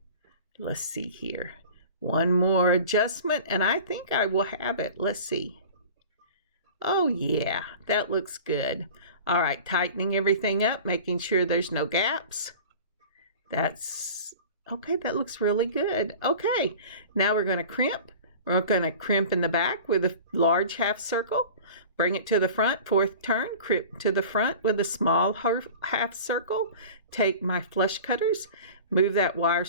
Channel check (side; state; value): both; inverted; correlation -0.39